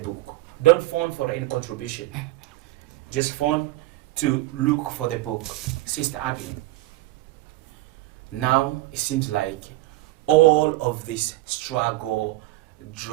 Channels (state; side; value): quieter; left; 18.1 dB